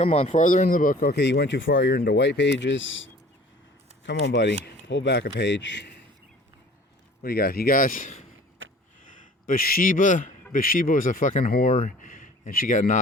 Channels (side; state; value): both; normal; correlation 0.48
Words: on, farther in the book. Okay, you went too far. You're into white pages. Come on, buddy. Pull back a page. What do you got? You guys? Bathsheba. Bathsheba was a fucking whore, and she got